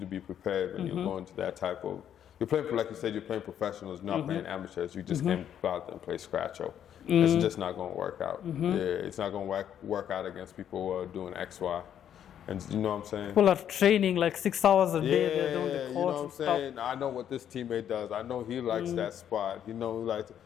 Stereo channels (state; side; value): quieter; right; 9.7 dB